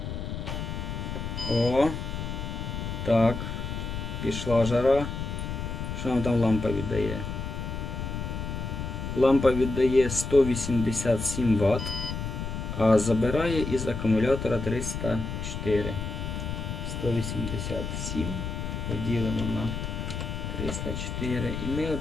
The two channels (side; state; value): left; noise; rumble, 5 dB below the sound